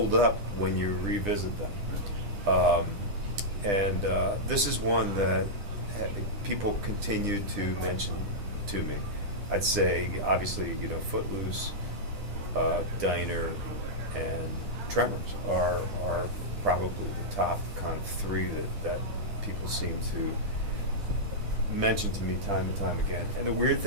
up when you revisit them. And this is one that people continue to mention to me. I'd say, obviously, you know, Footloose, Diner, and Tremors are probably the top kind of three that people seem to mention to me time and time again. And the weird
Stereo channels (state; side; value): late; left; 10 ms